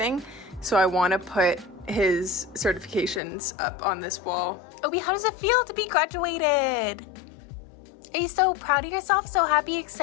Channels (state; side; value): drops out; right; at 3.2 s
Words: So I want to put his certifications up on this wall. Obi, how does it feel to be graduated? Are you so proud of yourself? So happy,